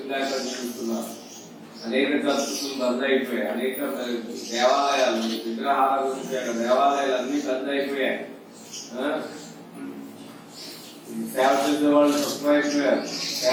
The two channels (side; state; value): both; identical; correlation 1.00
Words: చూస్తున్నారు. అనేక చర్చలు బంద్ అయిపోయాయి. అనేక దేవాలయాలు విగ్రహాలు దేవాలయాలు అన్ని బంద్ అయిపోయాయి. సేవ చేసే వాళ్ళు తక్కువైపోయారు.